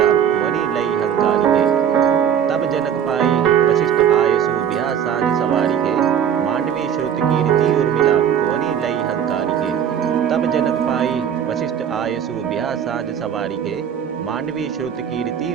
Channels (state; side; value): quieter; left; 8.8 dB